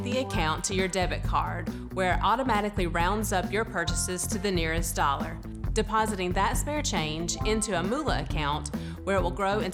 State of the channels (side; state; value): both; identical; correlation 1.00